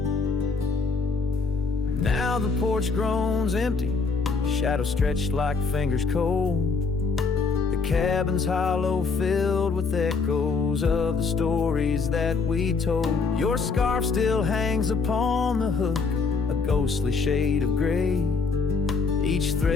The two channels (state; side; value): quieter; right; 4.6 dB